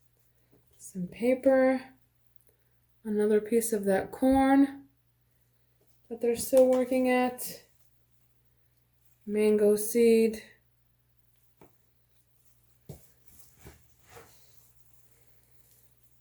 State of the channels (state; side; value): identical; both; correlation 1.00